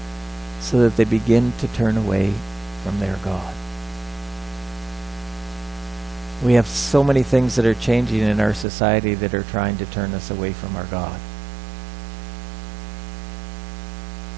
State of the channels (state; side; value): drops out; left; at 8.7 s